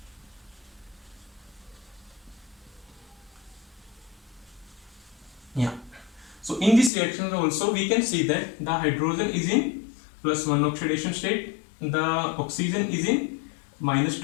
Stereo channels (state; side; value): drops out; right; at 6.9 s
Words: Yeah. So in this reaction also we can see that the hydrogen is in +1 oxidation state, the oxygen is in